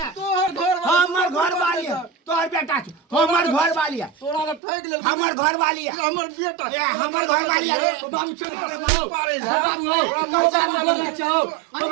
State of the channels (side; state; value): left; drops out; at 4.6 s